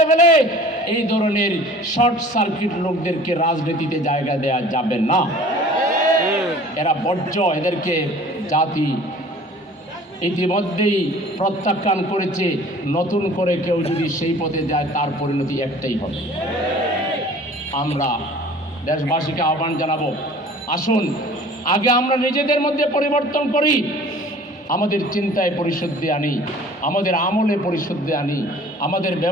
ফেলে, এই ধরনের শর্ট সার্কিট লোকদেরকে রাজনীতিতে জায়গা দেওয়া যাবে না। এরা বর্জ্য। এদেরকে জাতি ইতিমধ্যেই প্রত্যাখ্যান করেছে। নতুন করে কেউ যদি সেই পথে যায়, তার পরিণতি একটাই হবে। আমরা দেশবাসীকে আহ্বান জানাবো, আসুন আগে আমরা নিজেদের মধ্যে পরিবর্তন করি, আমাদের চিন্তায় পরিশুদ্ধি আনি, আমাদের আমলে পরিশুদ্ধি আনি, আমাদের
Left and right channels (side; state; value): both; normal; correlation 0.47